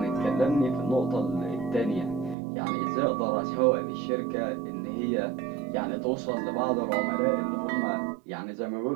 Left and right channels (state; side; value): drops out; left; at 2.4 s